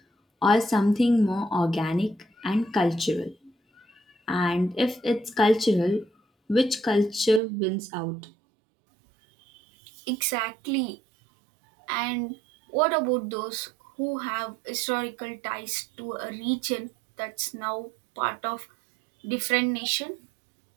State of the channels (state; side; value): drops out; left; at 7.4 s